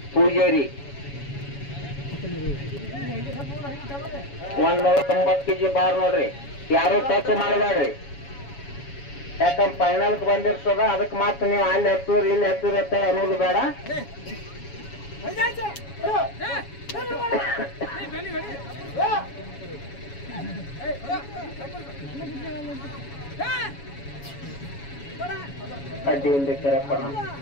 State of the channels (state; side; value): late; right; 7.2 ms